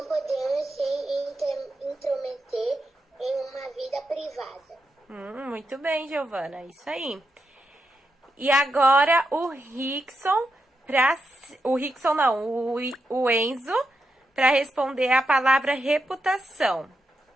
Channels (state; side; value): normal; both; correlation 0.85